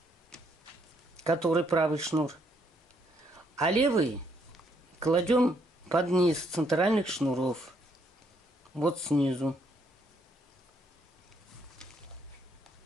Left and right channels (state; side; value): normal; both; correlation 0.72